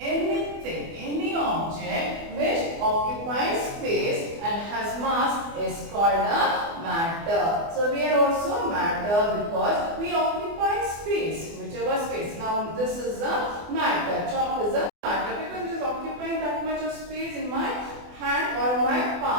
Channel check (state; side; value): late; left; 24 ms